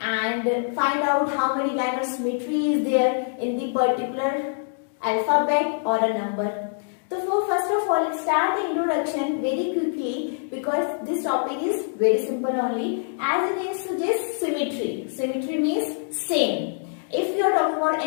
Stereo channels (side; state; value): right; silent; digital silence